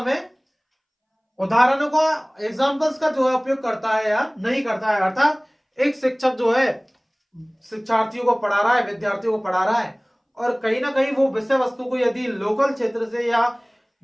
उदाहरणों का, एग्जाम्पल्स का जो है उपयोग करता है या नहीं करता है। अर्थात एक शिक्षक जो है शिक्षार्थियों को पढ़ा रहा है, विद्यार्थियों को पढ़ा रहा है, और कहीं ना कहीं वो विषय वस्तु को यदि लोकल क्षेत्र से या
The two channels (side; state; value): both; identical; correlation 1.00